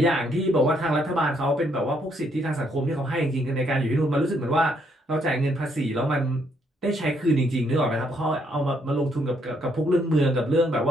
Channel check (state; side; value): normal; both; correlation 0.71